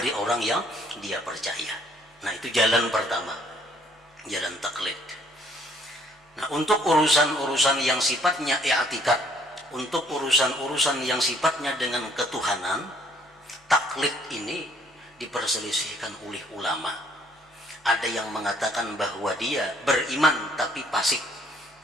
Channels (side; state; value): both; normal; correlation 0.63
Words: orang yang dia percaya. Nah, itu jalan pertama, jalan taklid. Nah, untuk urusan-urusan yang sifatnya i'tikad, untuk urusan-urusan yang sifatnya dengan ketuhanan, taklid ini diperselisihkan oleh ulama. Ada yang mengatakan bahwa dia beriman tapi fasik